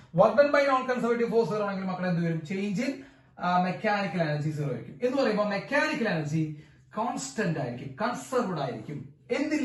Work done by non conservative force 0 ആണെങ്കിൽ മക്കളെ എന്ത് വരും? ചേഞ്ച് ഇൻ മെക്കാനിക്കൽ എനർജി 0 ആയിരിക്കും. എന്ന് പറയുമ്പോൾ മെക്കാനിക്കൽ എനർജി കോൺസ്റ്റന്റ് ആയിരിക്കും, കൺസർവ്ഡ് ആയിരിക്കും.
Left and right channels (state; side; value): identical; both; correlation 1.00